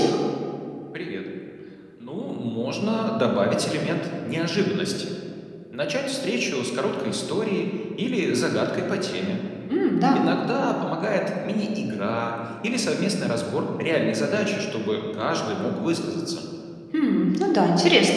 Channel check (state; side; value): identical; both; correlation 1.00